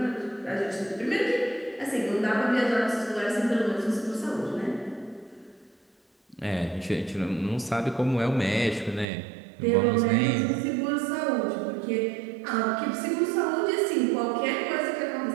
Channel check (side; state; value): left; drops out; at 9.1 s